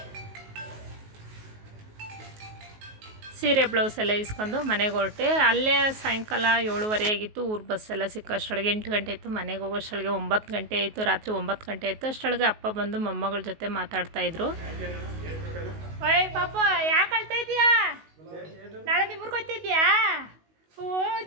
ಸೀರೆ ಬ್ಲೌಸ್ ಎಲ್ಲ ಇಸ್ಕೊಂಡು ಮನೆಗೆ ಹೊರಟೆ. ಅಲ್ಲೇ ಸಾಯಂಕಾಲ 7:30 ಆಗಿತ್ತು. ಊರು ಬಸ್ಸೆಲ್ಲ ಸಿಕ್ಕೋ ಅಷ್ಟೊಳಗೆ 8 ಗಂಟೆ ಆಯಿತು. ಮನೆಗೆ ಹೋಗೋ ಅಷ್ಟೊಳಗೆ 9 ಗಂಟೆ ಆಯಿತು. ರಾತ್ರಿ 9 ಗಂಟೆ ಆಯಿತು. ಅಷ್ಟೊಳಗೆ ಅಪ್ಪ ಬಂದು ಮೊಮ್ಮಗಳ ಜೊತೆ ಮಾತಾಡ್ತಾಯಿದ್ರು. ಓಯ್ ಪಾಪ, ಯಾಕೆ ಅಳ್ತಾ ಇದೀಯಾ? ನಾಳೆ ನಿಮ್ಮೂರ್ಗೆ ಹೋಗ್ತಿದ್ಯಾ? ಓ,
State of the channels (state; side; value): late; left; 19 ms